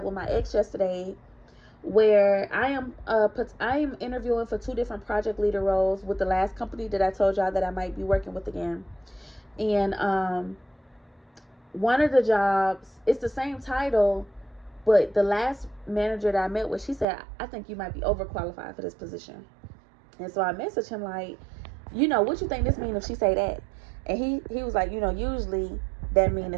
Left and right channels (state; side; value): drops out; left; at 17.1 s